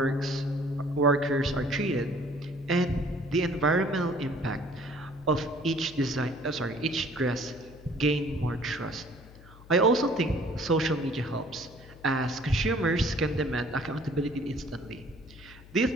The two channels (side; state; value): left; noise; hum, 21 dB below the sound